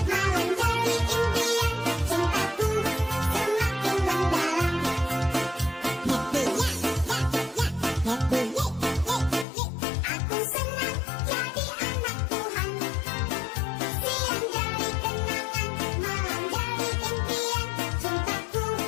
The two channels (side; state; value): right; drops out; at 9.5 s